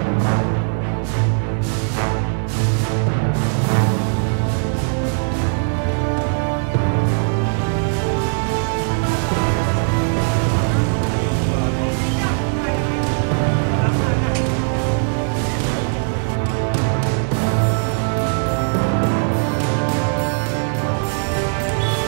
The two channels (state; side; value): silent; left; 56 dB below the other